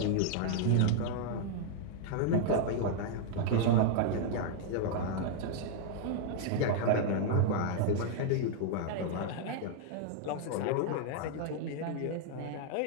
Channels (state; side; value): different; both; correlation -0.01